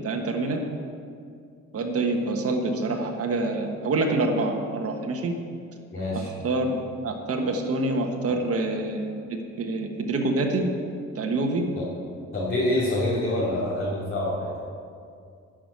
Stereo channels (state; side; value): normal; both; correlation 0.28